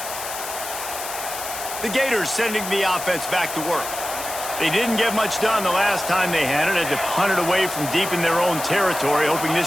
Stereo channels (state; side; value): noise; left; hiss, 8 dB below the sound